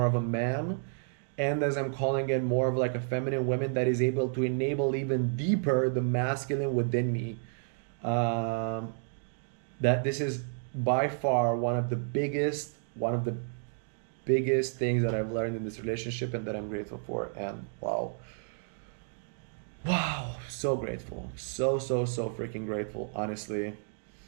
of a man, and as I'm calling in more of like a feminine woman that is able to enable even deeper the masculine within me. Um, that this is by far one of the biggest things that I've learned in this relationship, and that I'm grateful for. And wow, so grateful, so freaking grateful, honestly,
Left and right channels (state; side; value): silent; left; digital silence